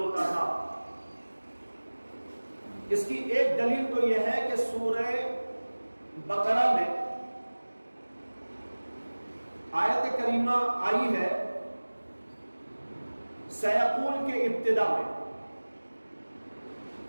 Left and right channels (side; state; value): both; inverted; correlation -1.00